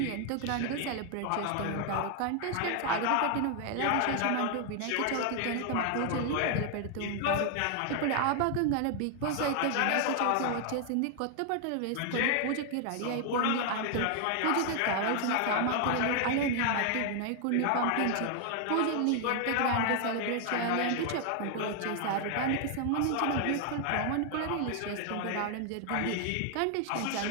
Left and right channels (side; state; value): both; different; correlation 0.00